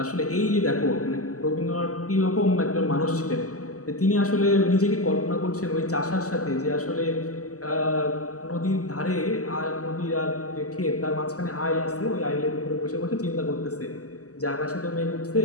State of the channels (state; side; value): late; right; 0.66 ms